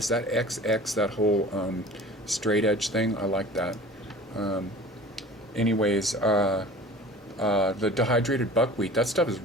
that XX, that whole straight edge thing? I like that. Anyways, the dehydrated buckwheat, that stuff is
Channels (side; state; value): both; normal; correlation 0.42